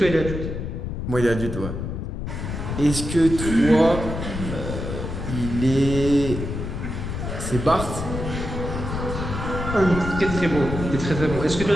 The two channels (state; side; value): noise; left; rumble, 5 dB below the sound